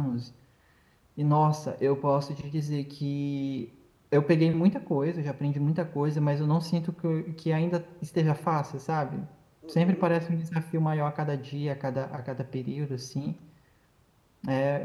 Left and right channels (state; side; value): identical; both; correlation 1.00